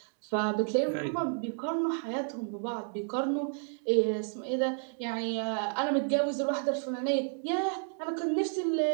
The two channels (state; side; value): silent; left; 57 dB below the other